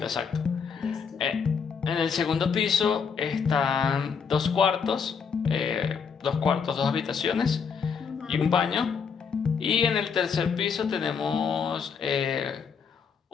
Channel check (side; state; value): right; quieter; 6.2 dB